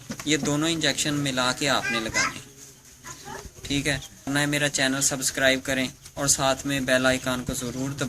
ये दोनों इंजेक्शन मिला के आपने लगाने हैं। ठीक है, ना मेरा चैनल सब्सक्राइब करें और साथ में बेल आइकन को ज़रूर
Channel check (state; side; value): identical; both; correlation 1.00